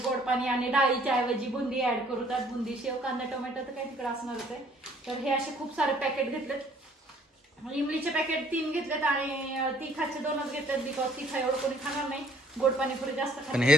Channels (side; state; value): both; normal; correlation 0.59